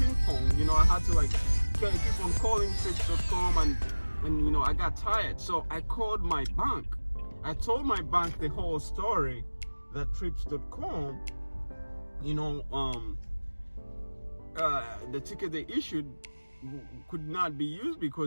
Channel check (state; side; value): inverted; both; correlation -1.00